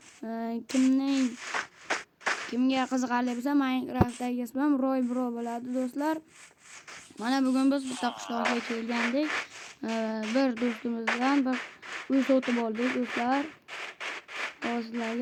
kimga qiziqarli bo'lsa Minecraftdagi ismim Roy Bro bo'ladi do'stlar. Mana bugun biz bitta qishloqqa kelgandik. Bir do'stimizdan bir uy sotib oldik do'stlar.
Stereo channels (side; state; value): both; identical; correlation 1.00